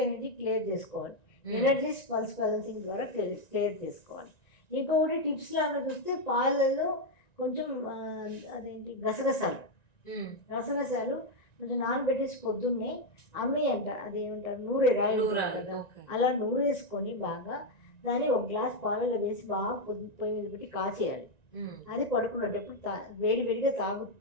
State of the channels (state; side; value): late; right; 1.9 ms